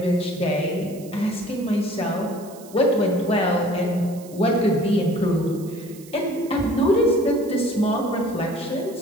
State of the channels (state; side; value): noise; right; hiss, 21 dB below the sound